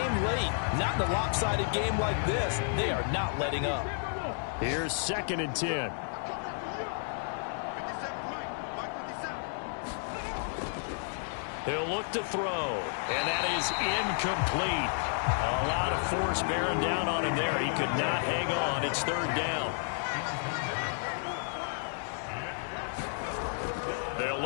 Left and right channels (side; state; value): right; silent; 55 dB below the other